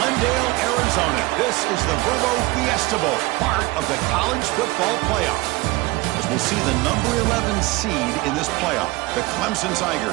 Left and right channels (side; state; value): left; quieter; 21.8 dB